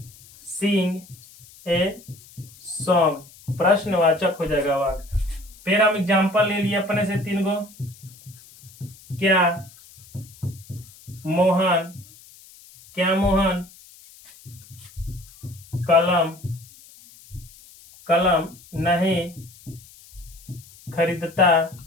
सिंग ए सॉन्ग, प्रश्नवाचक हो जाएगा वाक्य। फिर हम एग्जाम्पल ले लिए अपने से 3 गो, क्या मोहन कलम नहीं खरीदता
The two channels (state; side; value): noise; left; hiss, 23 dB below the sound